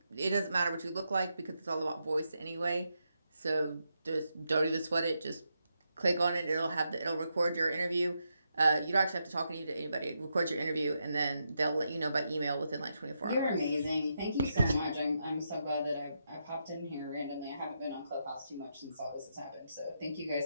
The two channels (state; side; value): inverted; both; correlation -0.83